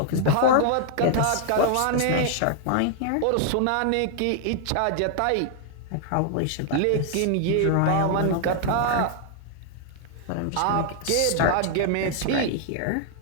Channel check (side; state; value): both; different; correlation 0.00